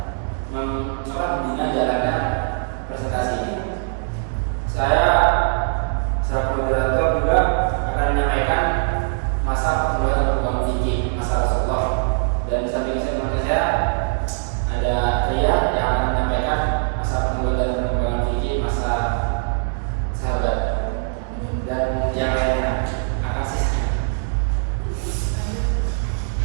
membina jalannya presentasi ini. Saya sebagai moderator juga akan menyampaikan masa pertumbuhan dan perkembangan fikih masa Rasulullah, dan di samping saya ada Ria yang akan menyampaikan masa pertumbuhan dan perkembangan fikih masa sahabat, dan yang lainnya akan sisa.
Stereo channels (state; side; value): silent; left; digital silence